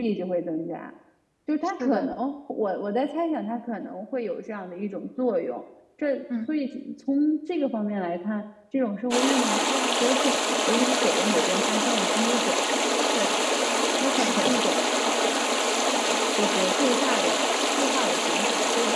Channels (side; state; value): both; identical; correlation 1.00